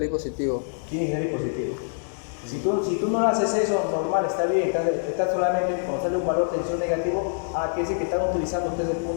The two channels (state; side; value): silent; right; digital silence